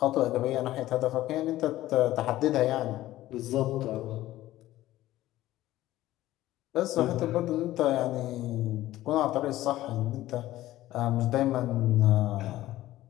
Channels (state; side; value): quieter; right; 15.3 dB